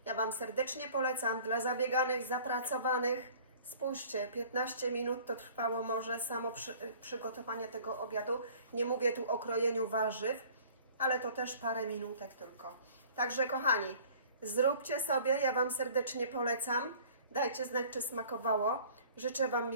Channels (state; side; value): inverted; both; correlation -0.50